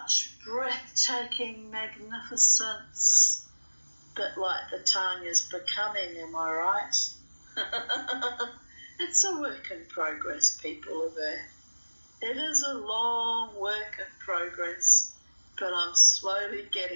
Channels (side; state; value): both; inverted; correlation -1.00